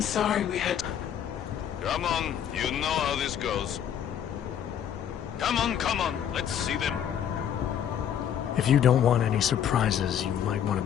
sorry we had to... Come on, you know how this goes. Come on, let's see them. If you don't want any surprises, you might want to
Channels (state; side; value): quieter; right; 9.4 dB